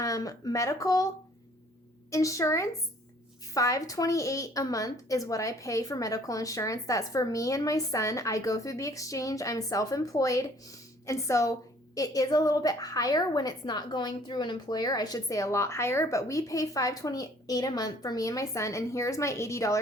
medical insurance. $528 a month is what I pay for medical insurance. That's for me and my son. I go through the exchange. I'm self-employed. And so it is a little bit higher when it's not going through an employer. I should say a lot higher, but we pay $528 a month for me and my son. And here's my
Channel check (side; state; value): both; normal; correlation 0.57